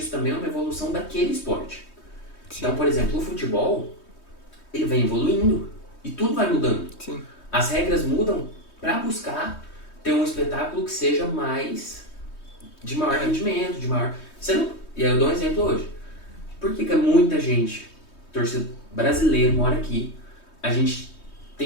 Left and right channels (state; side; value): late; right; 3.2 ms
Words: também é uma evolução daquele esporte. Sim. Então, por exemplo, o futebol, ele vem evoluindo e tudo vai mudando. Sim. As regras mudam para buscar ter um espetáculo que seja de maior rendimento, de maior... E aí eu dou um exemplo hoje. Por que muita gente, torcedor brasileiro, mora aqui, a gente